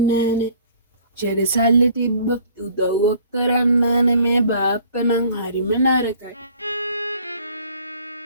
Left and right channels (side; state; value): both; inverted; correlation -0.55